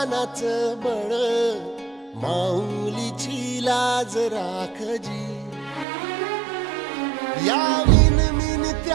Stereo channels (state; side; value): drops out; left; at 5.9 s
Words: बळ माऊलीची लाज राखजी या मिन